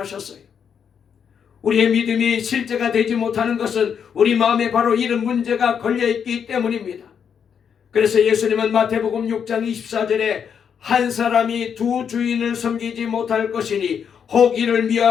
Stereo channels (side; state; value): right; quieter; 7.4 dB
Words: 우리의 믿음이 실제가 되지 못하는 것은 우리 마음에 바로 이런 문제가 걸려있기 때문입니다. 그래서 예수님은 마태복음 6장 24절에 한 사람이 두 주인을 섬기지 못할 것이니 혹 이를